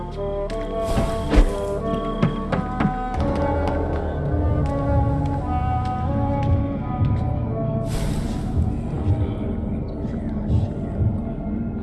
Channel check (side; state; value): both; identical; correlation 1.00